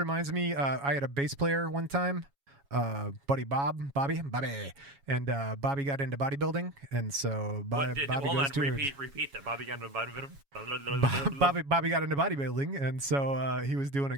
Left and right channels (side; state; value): left; late; 7.2 ms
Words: me, I had a bass player one time, Bobby, and Bobby got into bodybuilding, and so Bobby repeat that. Bobby got into bodybuilding. Bobby got into bodybuilding, and so he was doing a